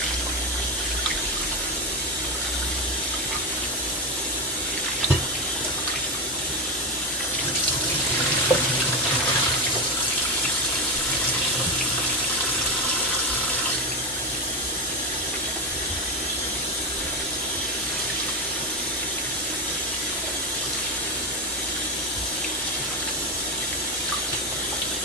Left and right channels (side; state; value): both; normal; correlation 0.14